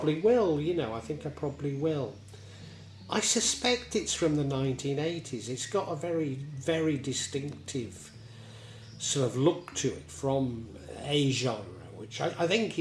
will. I suspect it's from the 1980s. It's got a very, very distinctive sort of look to it from a genre, which I think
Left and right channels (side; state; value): both; identical; correlation 1.00